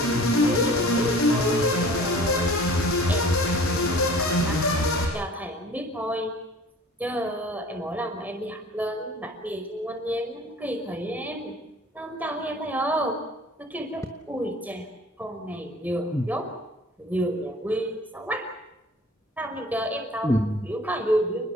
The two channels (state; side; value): normal; both; correlation 0.47